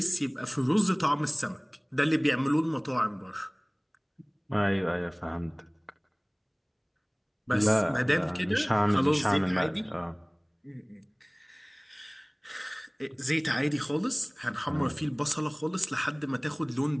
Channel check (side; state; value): both; identical; correlation 1.00